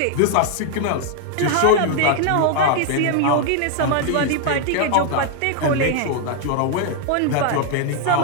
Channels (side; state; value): both; different; correlation 0.00